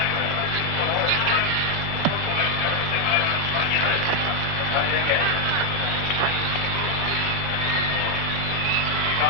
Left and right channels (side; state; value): left; late; 5.8 ms